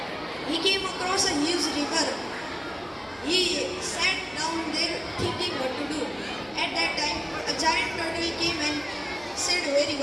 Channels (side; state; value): both; identical; correlation 1.00